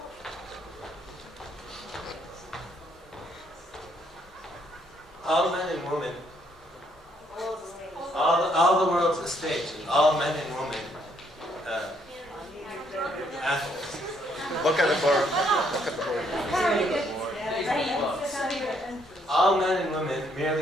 All men and women, all the world's a stage, and all men and women, athletes. Look at the board. Look at the board. All men and women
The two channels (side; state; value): both; normal; correlation 0.70